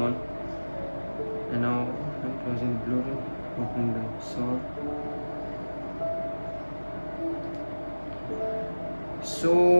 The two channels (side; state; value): both; inverted; correlation -1.00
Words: and now I'm closing Bluetooth, opening the song.